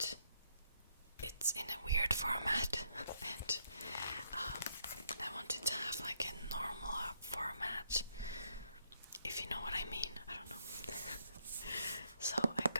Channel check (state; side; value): inverted; both; correlation -0.74